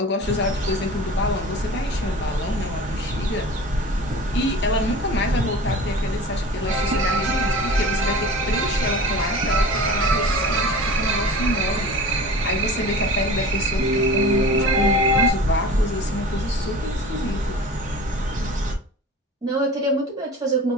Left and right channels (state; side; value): normal; both; correlation 0.38